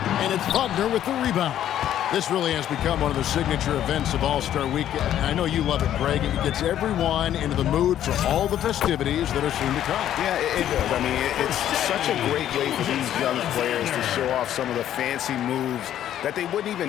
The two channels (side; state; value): right; quieter; 11.2 dB